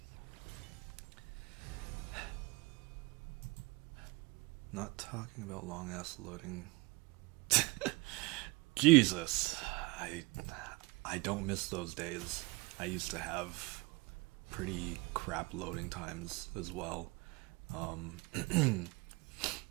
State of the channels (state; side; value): quieter; left; 24.9 dB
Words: not talking about long ass loading. Jesus, I don't miss those days. I used to have pretty crap loading times as well.